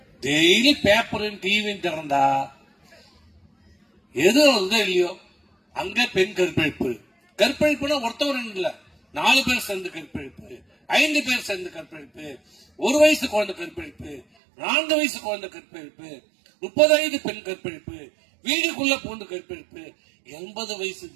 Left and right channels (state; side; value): drops out; left; at 14.2 s